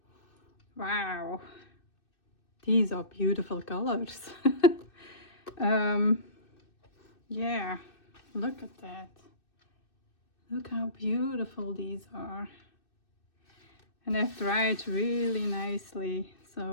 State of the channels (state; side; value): late; right; 2.6 ms